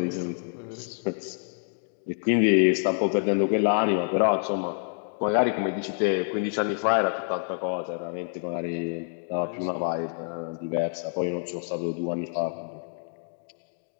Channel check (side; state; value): right; silent; digital silence